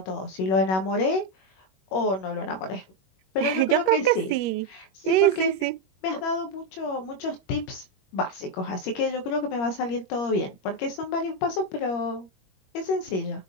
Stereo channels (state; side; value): late; right; 21 ms